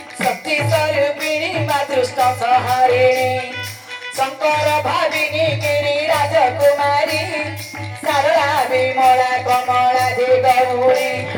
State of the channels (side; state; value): both; identical; correlation 1.00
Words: शक्ति स्वरूपिणी माँ दुष्ट संहारिणी शंकर भाविनी गिरी राजकुमारी सरला विमला कमला दे गौरी